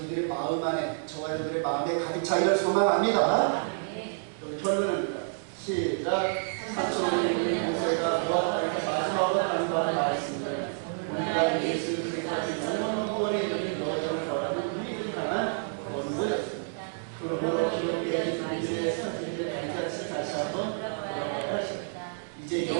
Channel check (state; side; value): silent; left; digital silence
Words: 마음 안에 저와 여러분들의 마음에 가득 차기를 소망합니다. 여기 결론입니다. 시작. 사촌의 모세가 노아하니까 마지막으로 간구하는 말씀들 우리가 예수 그리스도의 영원 구원에 이르는 여정을 걸어가는 우리들 향한 권고였습니다. 그러므로 기독교의 주님의 선생님을 단같이 다시 한번 돌아가야 하십니다. 이제